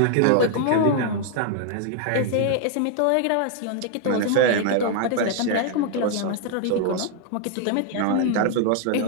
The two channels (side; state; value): both; different; correlation 0.00